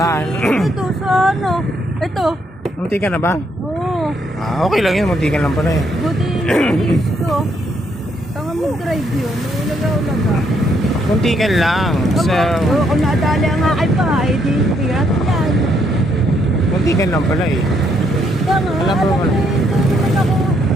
Ito, sa ano? Ito. Munti ka na ba? Oo. Okay lang yun, munti ka lang pala eh. Buti ito. Tama mag-drive yun. Ulaga-ulaga. Munti ka lang. So, Kung nadali ang akin pa, di bigat yan. munti ka lang pala eh. Tama, Alam mo ba? Ito naman ako.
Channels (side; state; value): both; normal; correlation 0.73